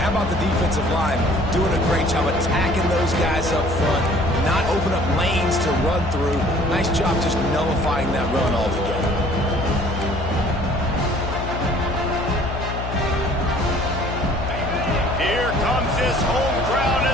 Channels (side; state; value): left; noise; hum, 6 dB below the sound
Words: how about the defensive line doing a great job attacking those guys up front, not open up lanes to run through. Nice job just nullifying that run altogether. Here comes this home crowd